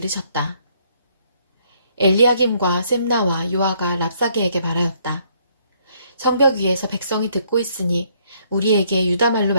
엘리야김과 셈나와 요아가 랍사게에게 말하였다. 성벽 위에서 백성이 듣고 있으니 우리에게 유다말로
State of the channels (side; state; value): both; inverted; correlation -0.67